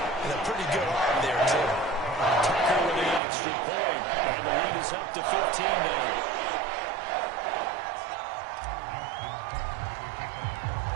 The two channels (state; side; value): drops out; left; at 3.2 s